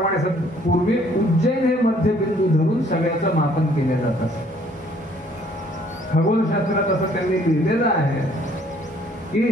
पूर्वी उज्जैन हे मध्यबिंदू धरून सगळ्याचं मापन केलं जात असे. खगोलशास्त्रात असं त्यांनी लिहिलेलं आहे की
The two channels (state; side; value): normal; both; correlation 0.61